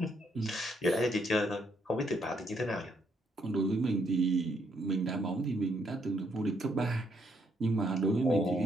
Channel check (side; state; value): both; normal; correlation 0.73